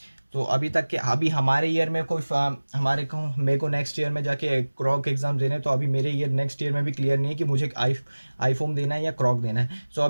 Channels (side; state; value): both; inverted; correlation -1.00